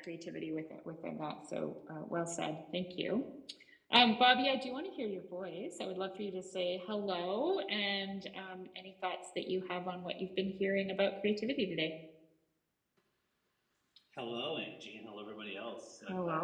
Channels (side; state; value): both; identical; correlation 1.00